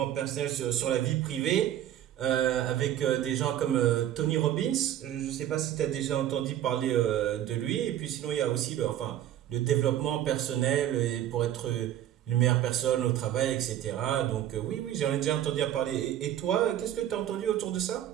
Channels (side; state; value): left; quieter; 11.7 dB